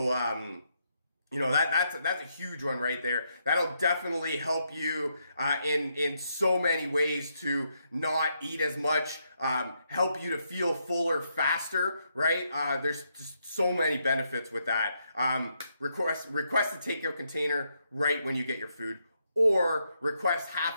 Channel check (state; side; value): inverted; both; correlation -0.78